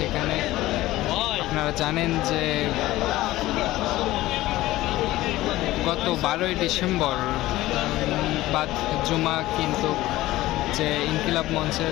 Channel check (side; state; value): right; quieter; 16.8 dB